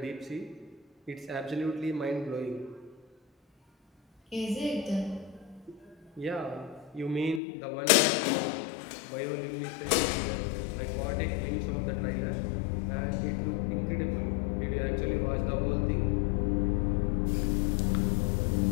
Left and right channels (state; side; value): drops out; right; at 7.4 s